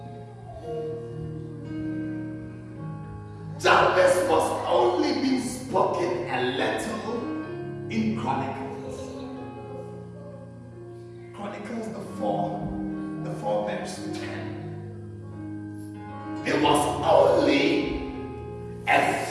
Jabez was only being spoken a little in Chronicles. Chronicles the 4 verse 10. It was only a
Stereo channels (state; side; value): identical; both; correlation 1.00